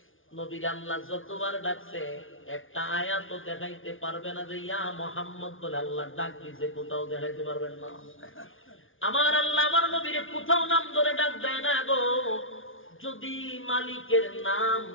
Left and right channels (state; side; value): late; right; 0.58 ms